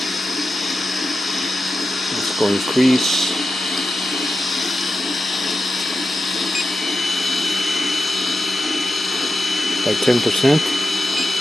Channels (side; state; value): both; normal; correlation 0.91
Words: Let's go increase. By 10%.